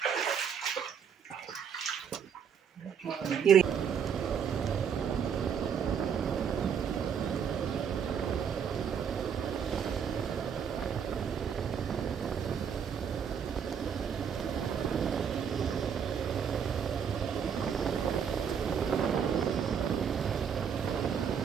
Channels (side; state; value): left; quieter; 7.4 dB